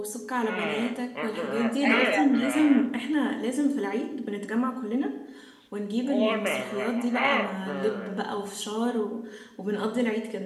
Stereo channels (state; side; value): identical; both; correlation 1.00